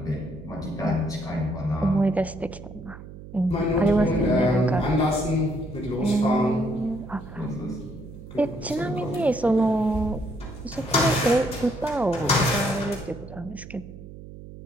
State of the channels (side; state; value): right; noise; hum, 15 dB below the sound